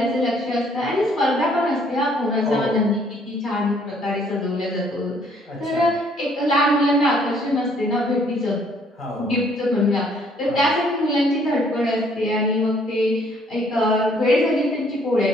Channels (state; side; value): normal; both; correlation 0.64